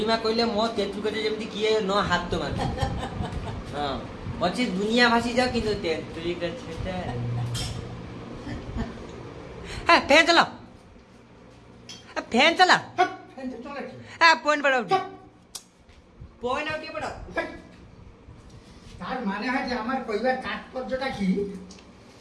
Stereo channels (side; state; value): both; identical; correlation 1.00